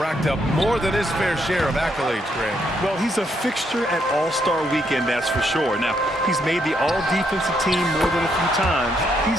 up more than his fair share of accolades, Greg. Well, he's a fixture at All-Star Weekend, that's for sure. Now, he's made the All-Defensive team more than a few times.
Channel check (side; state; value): both; normal; correlation 0.75